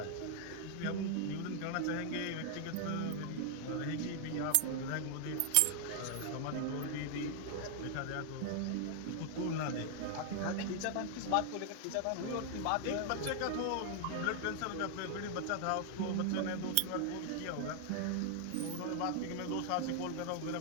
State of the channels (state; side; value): different; both; correlation 0.00